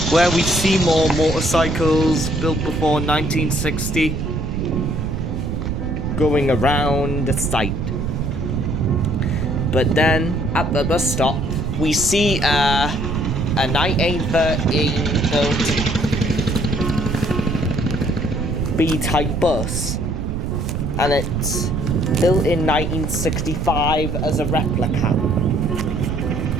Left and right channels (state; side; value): noise; right; rumble, 2 dB below the sound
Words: where we see more motorcycles built before 1960 going around the site. But then at the bus stop, we see a 1913 built B-type bus, and it's built in 1965 as a replica.